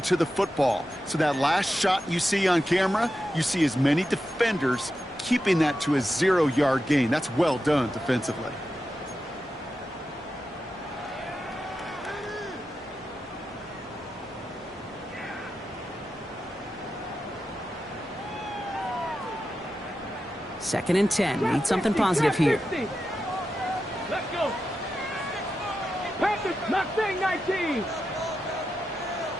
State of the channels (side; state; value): both; normal; correlation 0.89